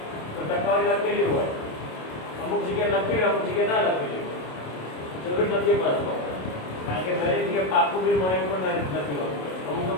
તો ટકાવારી લખેલી હોય, અમુક જગ્યાએ લખેલી અમુક જગ્યાએ ના લખેલી હોય. જરૂર નથી પાછો, કારણ કે દરેક જગ્યાએ પાકું બિલ મળે એવું પણ નથી હોતું. અમુક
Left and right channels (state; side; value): late; right; 27 ms